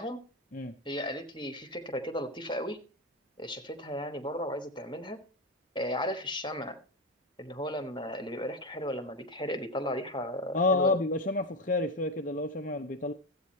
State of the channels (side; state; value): both; normal; correlation 0.14